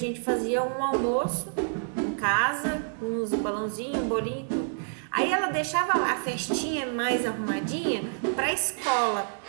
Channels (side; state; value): left; silent; digital silence